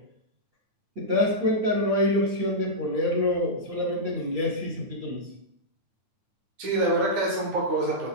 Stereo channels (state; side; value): late; left; 9.5 ms